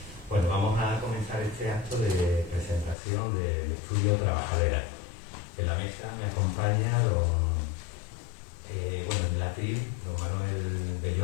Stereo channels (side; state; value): right; drops out; at 3.0 s